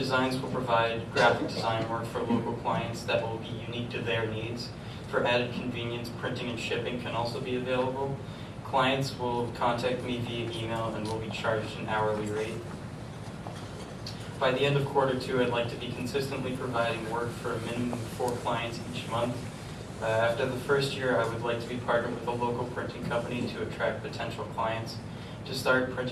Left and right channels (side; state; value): both; identical; correlation 1.00